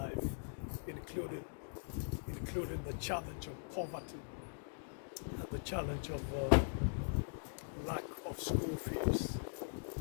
including the challenge of poverty and the challenge of lack of school fees.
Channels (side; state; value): right; silent; digital silence